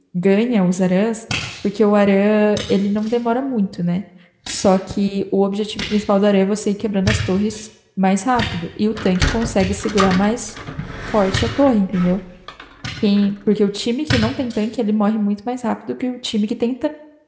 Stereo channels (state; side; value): identical; both; correlation 1.00